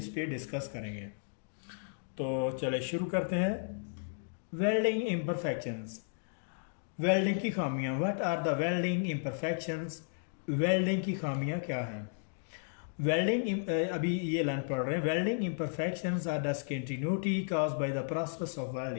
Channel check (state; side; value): silent; right; digital silence